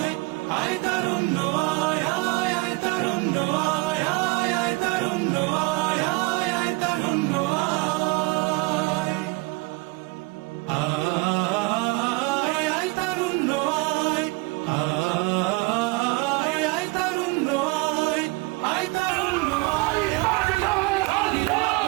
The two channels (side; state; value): left; quieter; 24.9 dB